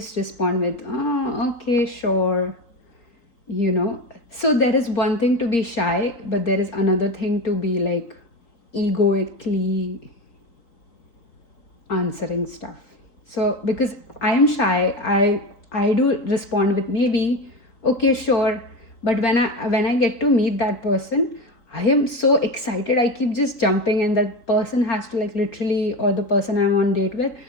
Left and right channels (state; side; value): late; right; 3.9 ms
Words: respond with, oh, okay, sure, you know. So there is one thing to be shy, but there is another thing to be like egoically answering stuff. So because I am shy, I do respond with maybe, okay, sure. But when I get to meet that person, I am so excited. I keep just jumping, and that person has to like literally, or the person I'm on date with,